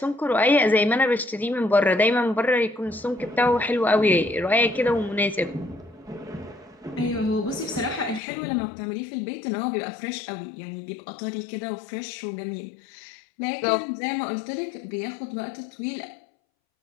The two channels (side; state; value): right; drops out; at 8.2 s